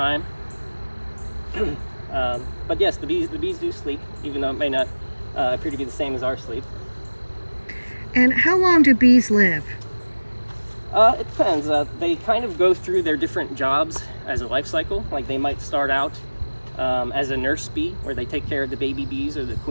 But yes, the bees do sleep, even though it may not appear to be the same as our sleep. And how long do bees live? It depends. They kind of go through their different jobs as a life cycle. Like they might start out as a nurse bee, where they take care of the baby bees or the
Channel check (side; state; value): both; inverted; correlation -1.00